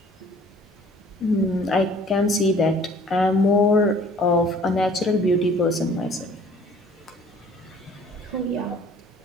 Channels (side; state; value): both; normal; correlation 0.53